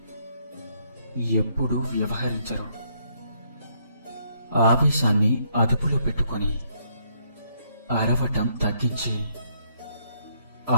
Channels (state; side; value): inverted; both; correlation -0.71